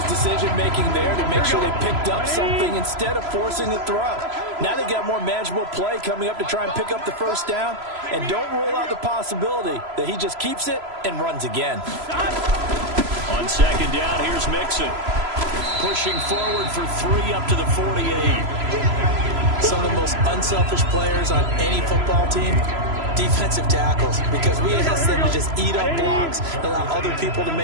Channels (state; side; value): late; left; 3.0 ms